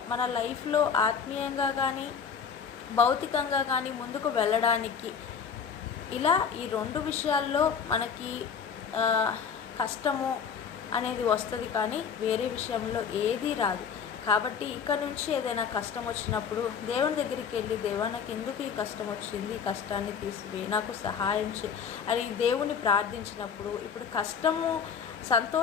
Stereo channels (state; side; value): quieter; right; 6.6 dB